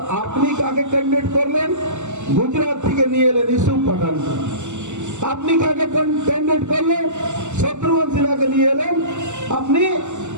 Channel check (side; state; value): left; late; 0.84 ms